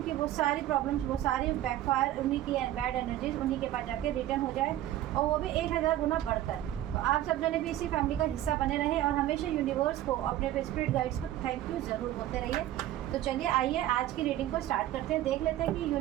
कि वो सारी प्रॉब्लम्स, वो सारी बैकफायर, उन्हीं की बैड एनर्जीज उन्हीं के पास जाके रिटर्न हो जाए और वो भी 1000 गुना बढ़कर। तो आप सब जने भी इसी फैमिली का हिस्सा बने रहे और हमेशा यूनिवर्स को, अपने स्पिरिट गाइड्स को थैंक यू ज़रूर बोलते रहिए। तो चलिए आइए आज की रीडिंग को स्टार्ट करते हैं। देख लेते हैं कि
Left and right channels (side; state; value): left; quieter; 13.5 dB